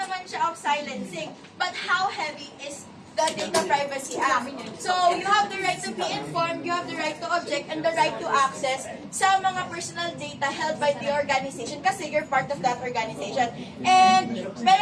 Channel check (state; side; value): identical; both; correlation 1.00